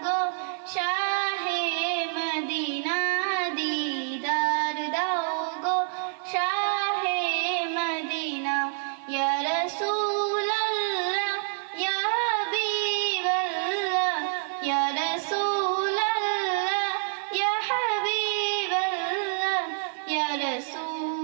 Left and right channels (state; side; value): silent; left; digital silence